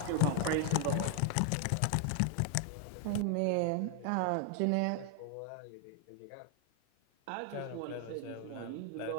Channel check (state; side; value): different; both; correlation 0.00